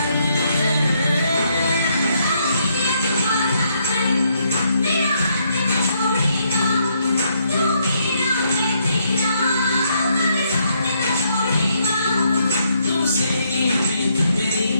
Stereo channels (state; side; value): inverted; both; correlation -0.73